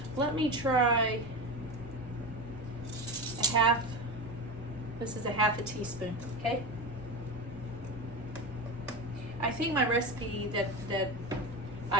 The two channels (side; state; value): left; noise; rumble, 19 dB below the sound